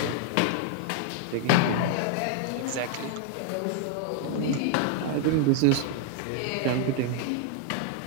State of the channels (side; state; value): both; different; correlation 0.00